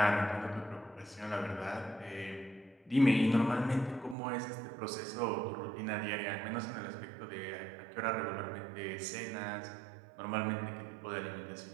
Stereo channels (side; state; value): left; drops out; at 4.2 s